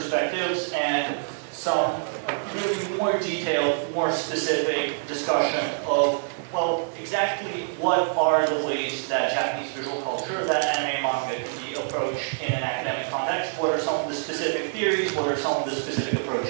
and some really more detailed, more specific discussion of, well, exactly what are the ways that Japanese visual culture, that anime and manga can be approached in an academic context? What are some of the specific theories? What are some of the specific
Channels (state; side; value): silent; left; digital silence